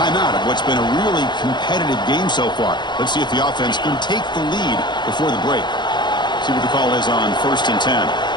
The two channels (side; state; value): right; late; 0.21 ms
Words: of what's been a really competitive game so far. Let's see if the offense can take the lead before the break. See what the call is on 1st and 10.